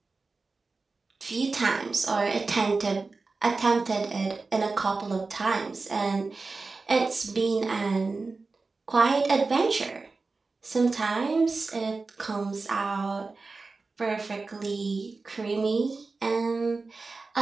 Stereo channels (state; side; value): quieter; left; 3.9 dB